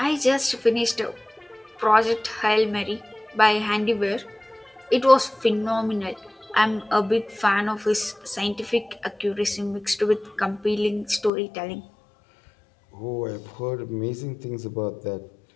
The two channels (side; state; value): right; drops out; at 11.3 s